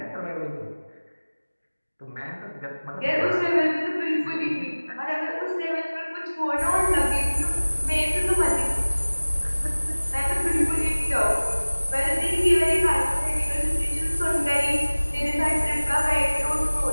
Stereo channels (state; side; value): inverted; both; correlation -1.00